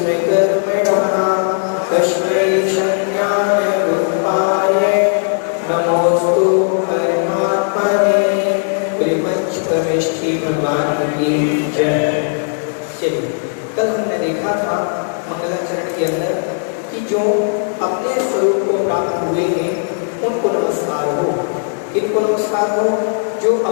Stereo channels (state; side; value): silent; right; 68 dB below the other